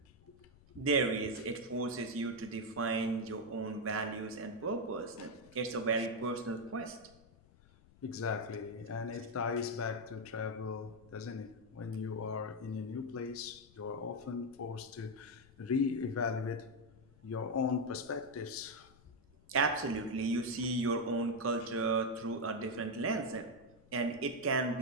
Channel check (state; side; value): noise; left; rumble, 25 dB below the sound